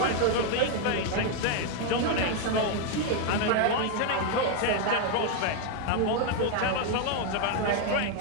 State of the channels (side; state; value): both; different; correlation 0.01